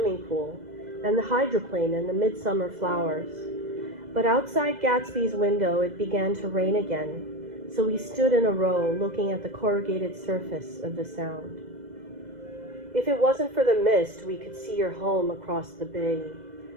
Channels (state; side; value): late; left; 2.0 ms